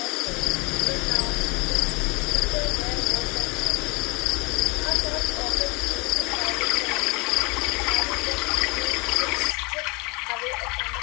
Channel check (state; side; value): quieter; right; 28.2 dB